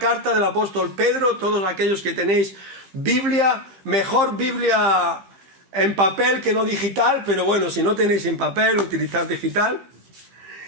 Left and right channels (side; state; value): left; late; 15 ms